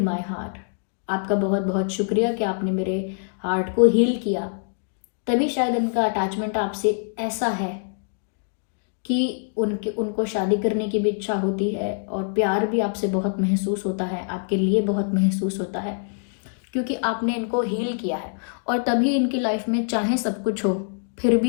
heart. आपका बहुत बहुत शुक्रिया कि आपने मेरे हार्ट को हील किया। तभी शायद इनका अटैचमेंट आपसे ऐसा है कि उनको शादी करने की भी इच्छा होती है और प्यार भी आपसे बहुत महसूस होता है, आपके लिए बहुत महसूस होता है, क्योंकि आपने इनको हील किया है। और तभी इनकी लाइफ में चाहे सब कुछ हो, फिर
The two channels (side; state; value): right; silent; digital silence